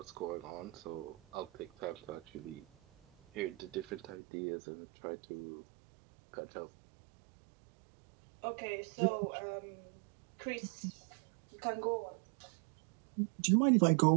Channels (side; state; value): left; drops out; at 4.2 s